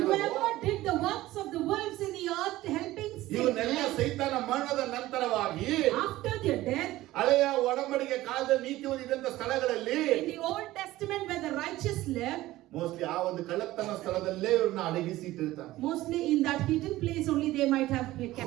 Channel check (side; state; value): left; quieter; 16.6 dB